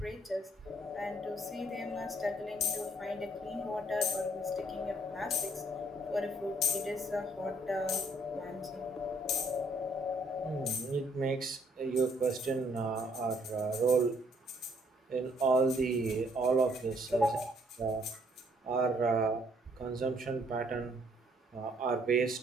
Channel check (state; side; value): normal; both; correlation 0.65